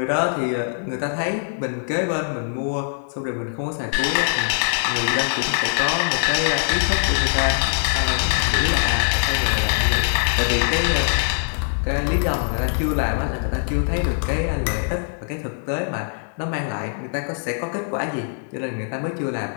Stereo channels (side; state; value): right; silent; 64 dB below the other